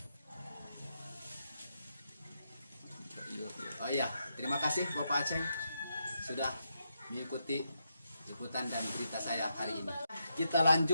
Oh iya, terima kasih Bapak Aceng sudah mengikuti liputan dan berita saya hari ini. Kita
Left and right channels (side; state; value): both; inverted; correlation -0.82